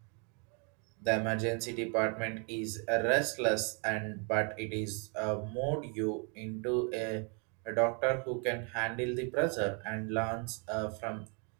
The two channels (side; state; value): left; quieter; 37.1 dB